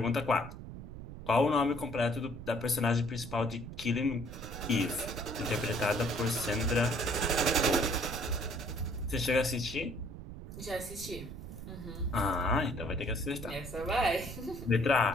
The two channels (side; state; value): right; noise; rumble, 11 dB below the sound